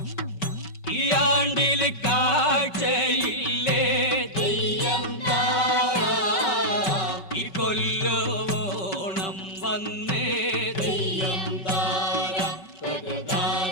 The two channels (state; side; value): late; right; 5.2 ms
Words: ഈ ആണ്ടിൽ കാഴ്ചയില്ലേ തെയ്യം താര ഈ കൊല്ലോണം വന്നേ തെയ്യം താര തക